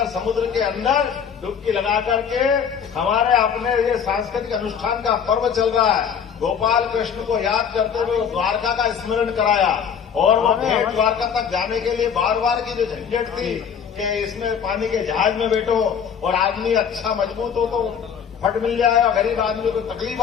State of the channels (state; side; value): quieter; right; 7.4 dB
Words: समुद्र के अंदर डुबकी लगा करके हमारे अपने ये सांस्कृतिक अनुष्ठान का पर्व चल रहा है। गोपाल कृष्ण को याद करते हुए द्वारका का स्मरण कराया, और वो भेंट द्वारका तक जाने के लिए बार बार की जो झंझट थी कि इसमें पानी के जहाज में बैठो और आदमी अच्छा मजबूत हो तो फट मिल जाए, और गरीब आदमी को तकलीफ